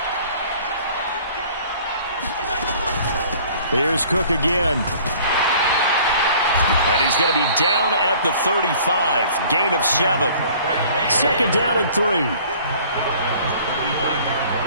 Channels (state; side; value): inverted; both; correlation -0.52